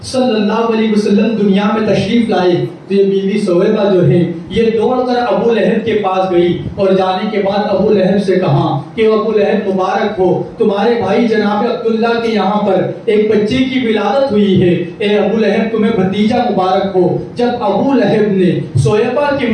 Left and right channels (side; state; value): both; identical; correlation 1.00